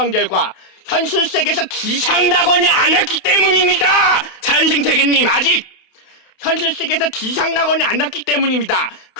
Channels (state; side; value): late; right; 28 ms